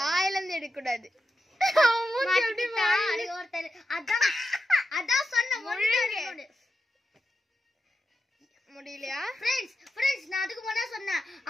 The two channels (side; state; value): both; normal; correlation 0.88